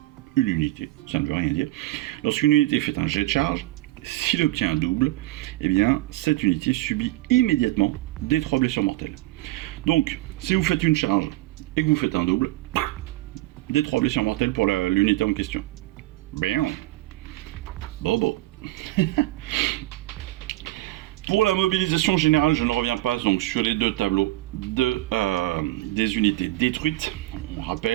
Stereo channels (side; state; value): left; quieter; 18.0 dB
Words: une unité, ça ne veut rien dire. Lorsqu'une unité fait un jet de charge, s'il obtient un double, eh bien cette unité subit immédiatement des 3 blessures mortelles. Donc, si vous faites une charge et que vous faites un double, des 3 blessures mortelles pour l'unité en question. Bien. Bobo. Pour la mobilisation générale, je ne reviens pas donc sur les 2 tableaux des unités détruites. On